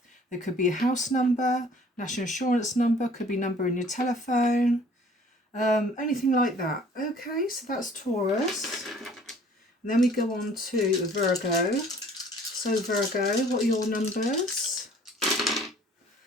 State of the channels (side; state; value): both; normal; correlation 0.54